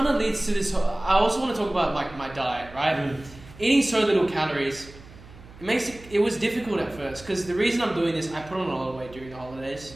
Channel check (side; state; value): right; noise; hum, 19 dB below the sound